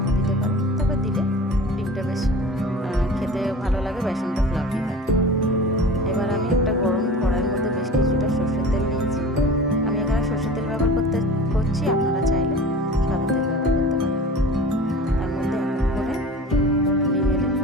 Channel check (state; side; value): normal; both; correlation 0.38